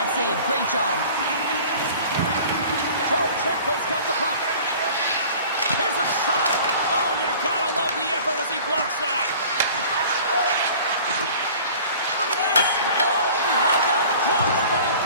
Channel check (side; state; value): both; inverted; correlation -0.45